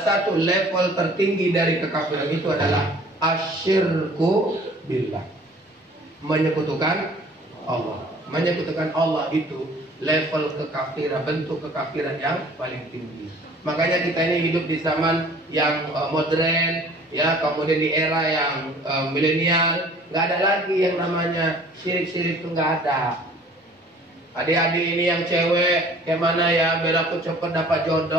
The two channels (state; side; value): normal; both; correlation 0.51